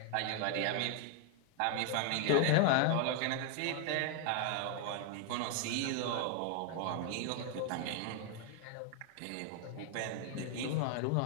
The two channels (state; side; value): different; both; correlation 0.00